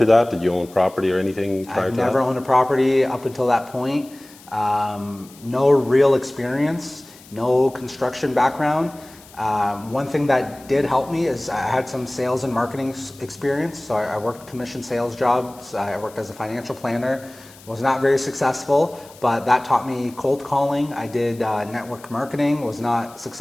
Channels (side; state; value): left; noise; hiss, 23 dB below the sound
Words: that? Did you own property or anything prior to that? I've never owned a property up until that point. No real experience. No construction background. One thing that did help me is I had some sales and marketing experience. So I worked commission sales jobs. I worked as a financial planner. Was not very successful, but that taught me cold calling. I did network marketing. Was not